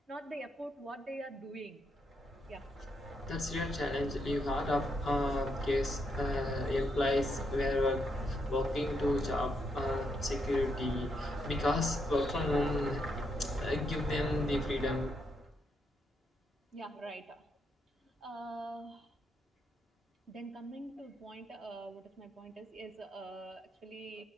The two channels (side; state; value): both; normal; correlation 0.79